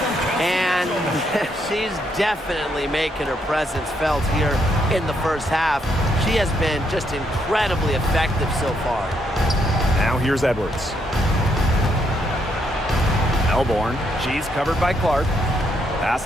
And she's definitely making her presence felt here in the first half. She has been just incredibly effective so far. Now here's Edwards. Melbourne. She's covered by Clark. Pass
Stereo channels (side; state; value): both; normal; correlation 0.75